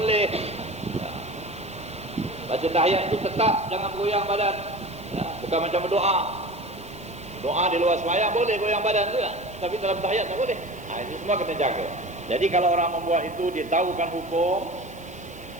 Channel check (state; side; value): noise; right; hiss, 24 dB below the sound